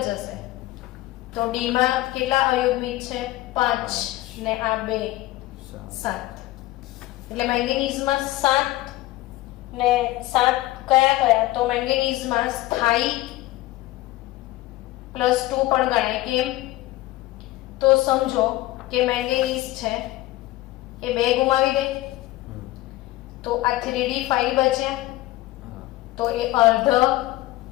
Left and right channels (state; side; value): quieter; right; 17.4 dB